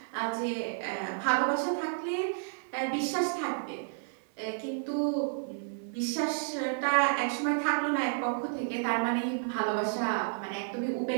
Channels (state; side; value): silent; left; digital silence